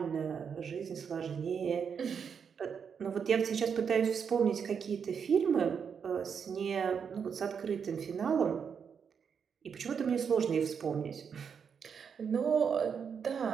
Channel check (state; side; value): quieter; left; 6.8 dB